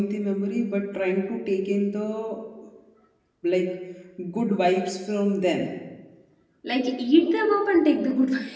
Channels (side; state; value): both; identical; correlation 1.00